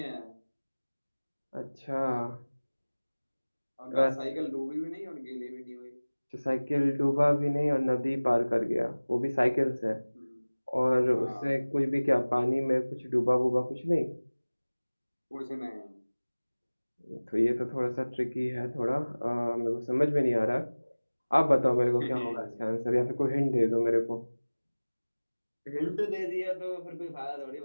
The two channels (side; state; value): both; inverted; correlation -1.00